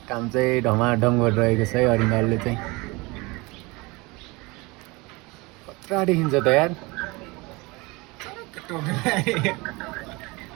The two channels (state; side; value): quieter; left; 24.6 dB